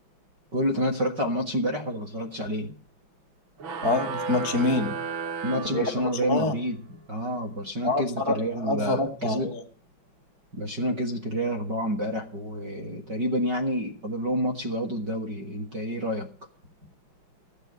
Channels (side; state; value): left; late; 5.3 ms